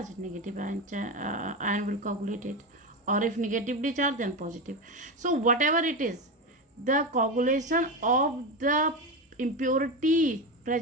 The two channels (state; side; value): normal; both; correlation 0.17